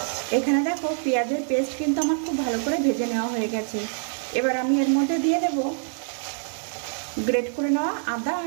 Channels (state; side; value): silent; left; digital silence